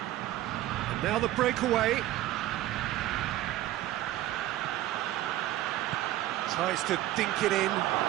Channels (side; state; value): left; quieter; 14.8 dB